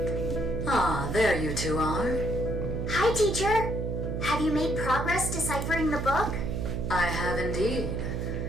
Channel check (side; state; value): right; noise; hum, 2 dB below the sound